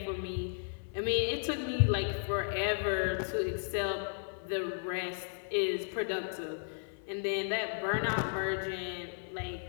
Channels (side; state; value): right; silent; 55 dB below the other